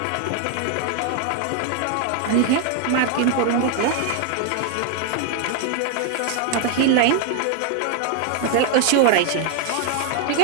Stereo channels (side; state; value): both; different; correlation 0.00